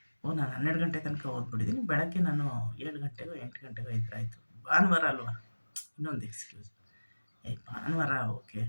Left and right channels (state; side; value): inverted; both; correlation -1.00